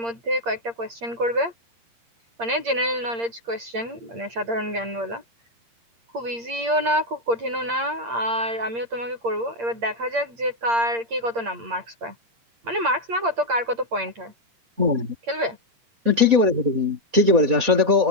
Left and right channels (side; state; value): left; late; 8.6 ms